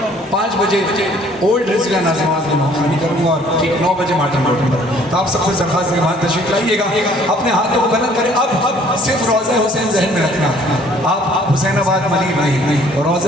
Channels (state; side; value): normal; both; correlation 0.58